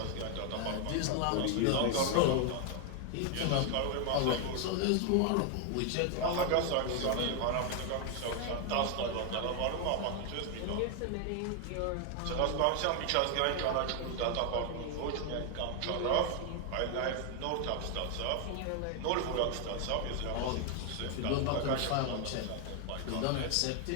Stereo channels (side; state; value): both; different; correlation 0.00